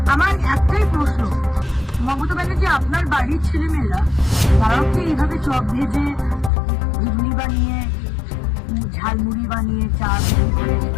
আমার একটাই প্রশ্ন, মমতা ব্যানার্জি আপনার বাড়ির ছেলেমেয়েরা তারাও কি এইভাবে চপ ভেজে, ঘুগনি বানিয়ে, ঝালমুড়ি বানিয়ে, চা বিক্রি করে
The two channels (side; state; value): right; drops out; at 6.5 s